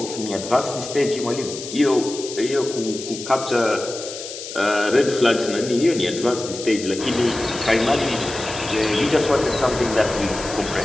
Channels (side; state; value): left; noise; hiss, 10 dB below the sound